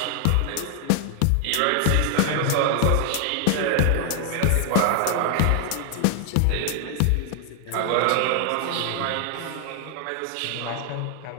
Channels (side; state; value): both; different; correlation 0.00